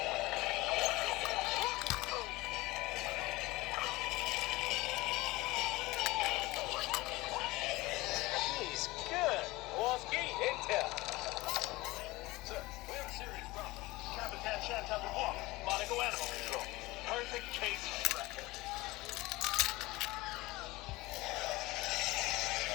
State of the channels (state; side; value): quieter; right; 20.6 dB